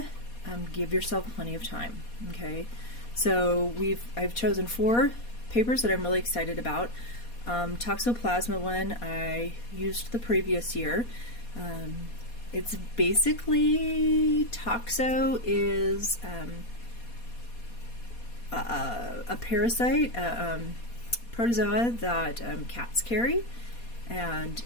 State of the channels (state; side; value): late; right; 4.2 ms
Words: give yourself plenty of time. Okay, so I've chosen 4 papers that I'm really excited about. Toxoplasma one I used the previous year. It's basically, toxo is a parasite, protozoa that cats carry and